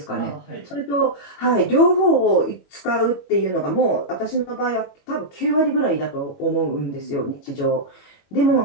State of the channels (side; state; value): right; late; 21 ms